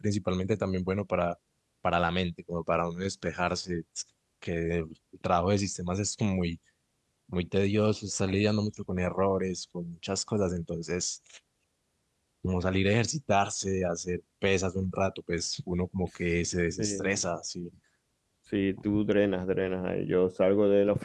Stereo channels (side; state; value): both; identical; correlation 1.00